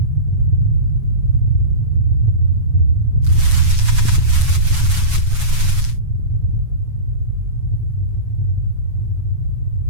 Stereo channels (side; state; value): left; late; 7.2 ms